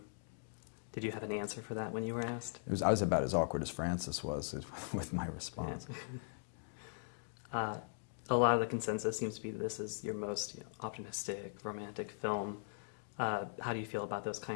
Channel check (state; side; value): silent; right; digital silence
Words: Did you have an answer for that when you were asked? I was about as awkward as Frances was with my response. Yeah. A lot of the consensus seems to be that this is your most optimistic, romantic film. How do you feel about those